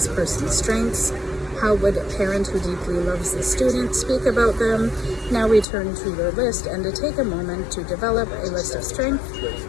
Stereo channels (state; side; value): drops out; right; at 5.7 s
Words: person's strengths? How would a parent who deeply loves the student speak about them? Now return to your list and to take a moment to develop a list of strength,